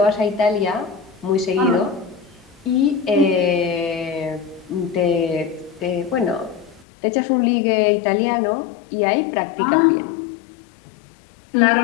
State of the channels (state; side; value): drops out; right; at 6.9 s